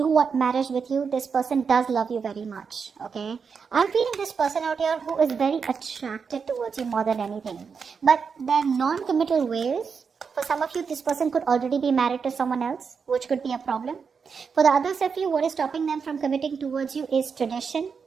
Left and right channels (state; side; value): quieter; left; 5.8 dB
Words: want marriage with you. This person does love you very much, okay? I'm feeling this person out here who is very attracted towards you more than anything. But their non-committal ways, for some of you, this person could already be married to someone else, which could be a problem. For the others of you, what is stopping them from committing towards you is tradition,